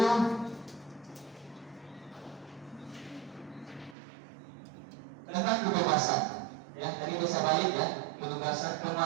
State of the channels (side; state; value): left; drops out; at 4.0 s